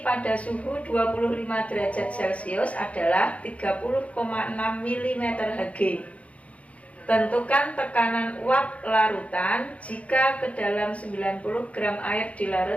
pada suhu 25 derajat Celcius adalah 30,6 mm Hg. Tentukan tekanan uap larutan jika ke dalam 90 gram air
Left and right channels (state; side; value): late; right; 0.065 ms